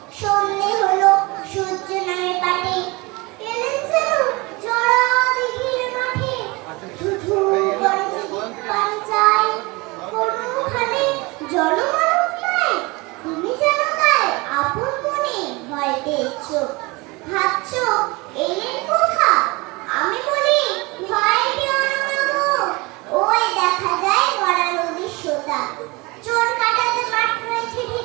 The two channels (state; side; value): quieter; left; 25.0 dB